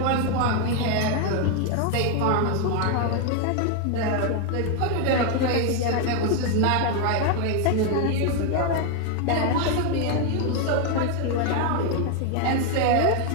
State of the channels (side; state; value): both; different; correlation 0.01